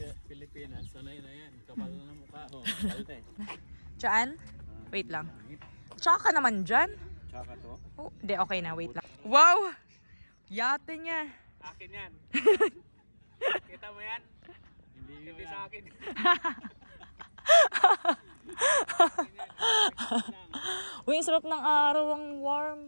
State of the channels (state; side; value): inverted; both; correlation -1.00